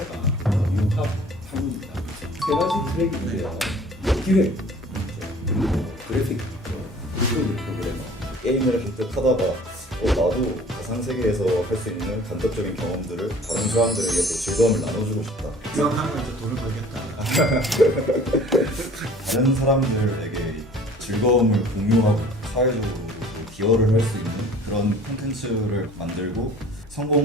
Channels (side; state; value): both; normal; correlation 0.49